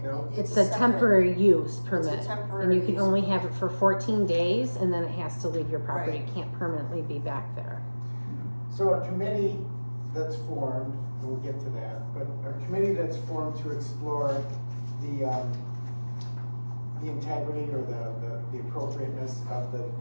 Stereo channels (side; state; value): both; inverted; correlation -1.00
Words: No. it's It's a separate. temporary use permit, temporary and you can use only have it for 14 days, and then it has to leave your property. Right. It can't permanently be back there. So a committee that's formed, and we'll get to that, but a committee that's formed to explore the integrity or the appropriateness of